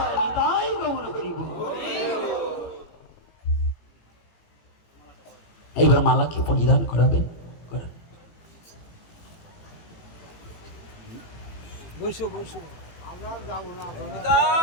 নিতাই গৌর হরি বল। এইবার মালাকে পরিধান করাবেন, করেন। বসো বসো।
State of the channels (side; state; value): right; late; 18 ms